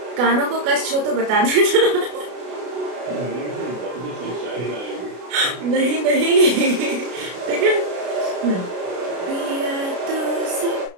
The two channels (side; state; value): left; late; 33 ms